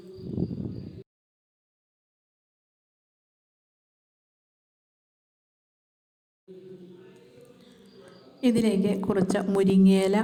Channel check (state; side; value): identical; both; correlation 1.00